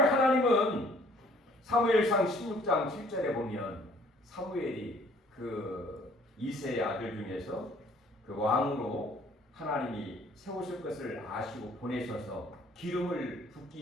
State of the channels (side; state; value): both; normal; correlation 0.58